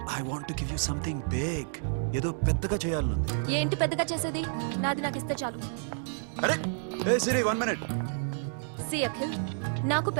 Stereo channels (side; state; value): left; silent; digital silence